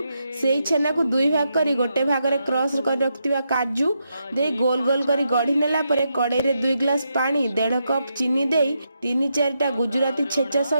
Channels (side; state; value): both; inverted; correlation -0.83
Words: सेई छेना को दुई भाग करी गोटे भाग रे क्रश कर रखतिबा काजू दे गोल गोल करी गढ़ी नेला परे कड़ाई रे 2 ग्लास पानी 1.5 कप चीनी दे 3-4टा गुजराती छेचा